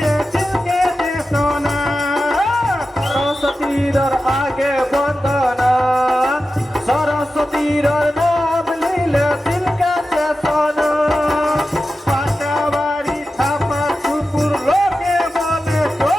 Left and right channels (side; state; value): both; normal; correlation 0.92